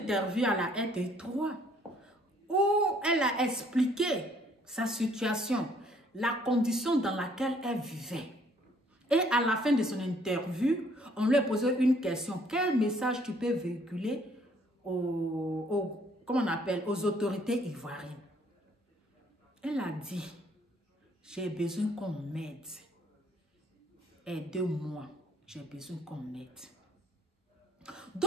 à la RT3, où elle a expliqué sa situation, la condition dans laquelle elle vivait. Et à la fin de son interview, on lui a posé une question. Quel message tu peux véhiculer comment on appelle, aux autorités ivoiriennes? Elle a dit, j'ai besoin qu'on m'aide. Aidez-moi, j'ai besoin qu'on m'aide.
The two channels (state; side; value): normal; both; correlation 0.63